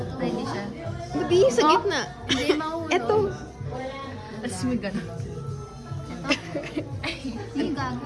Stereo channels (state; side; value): identical; both; correlation 1.00